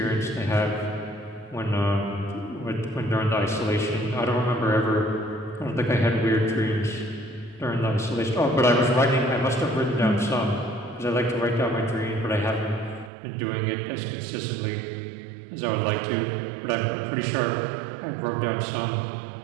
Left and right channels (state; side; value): drops out; left; at 13.1 s